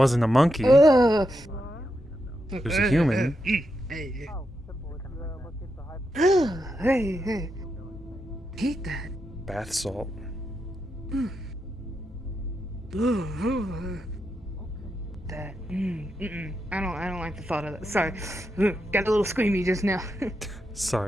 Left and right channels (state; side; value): normal; both; correlation 0.85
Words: a monkey. Ugh. It was a human. Hey, hey. Hate that. Bath salt. That. I don't like the thought of that. Sorry. Got a little squeamy just now.